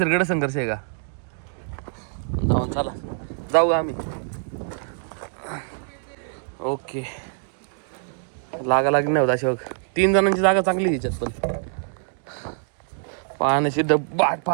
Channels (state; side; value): silent; left; digital silence